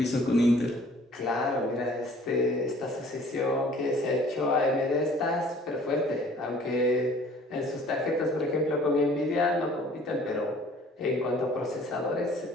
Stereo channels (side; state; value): both; normal; correlation 0.53